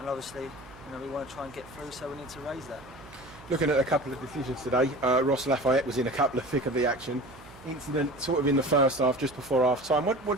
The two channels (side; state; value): right; noise; hum, 21 dB below the sound